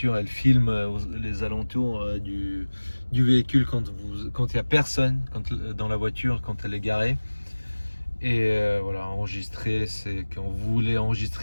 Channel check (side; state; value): both; inverted; correlation -1.00